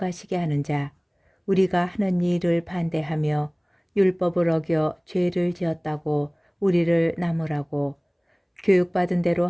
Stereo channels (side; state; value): both; identical; correlation 1.00